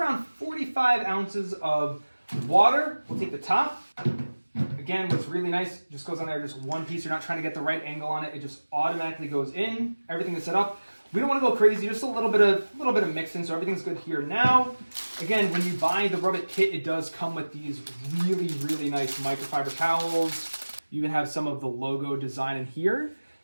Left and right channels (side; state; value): both; inverted; correlation -1.00